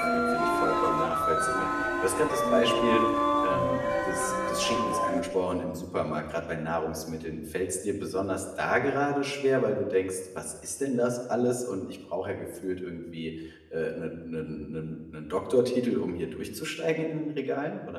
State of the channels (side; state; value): both; identical; correlation 1.00